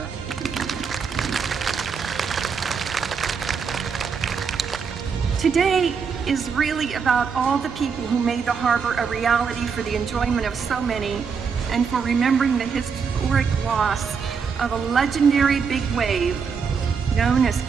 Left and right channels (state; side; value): quieter; left; 5.9 dB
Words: Today is really about all the people who made the harbor a reality for the enjoyment of so many, and for remembering the historic loss of a legendary big wave known as